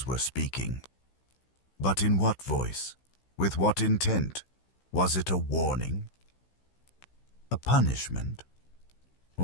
were speaking. But in what voice? With what intent? Was it a warning? A punishment?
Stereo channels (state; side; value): late; right; 16 ms